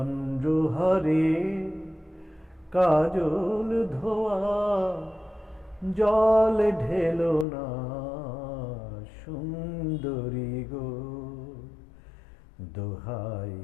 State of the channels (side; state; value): right; drops out; at 7.5 s